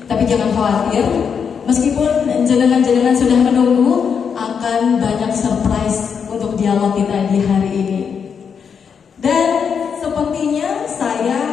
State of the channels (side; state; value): right; quieter; 6.7 dB